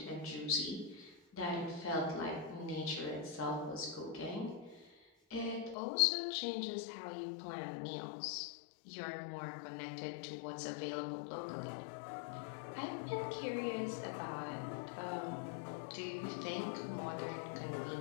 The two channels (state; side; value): drops out; right; at 5.8 s